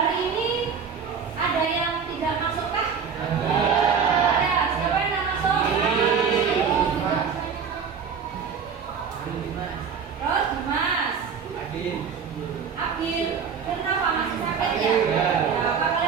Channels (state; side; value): quieter; left; 6.4 dB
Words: ini ada yang tidak masuk kah? Ada. Siapa yang tidak masuk? Abin, kenapa masih sakit ya? Apa